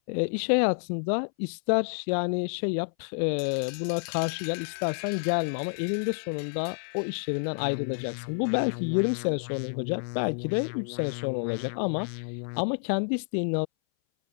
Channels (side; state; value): right; silent; 59 dB below the other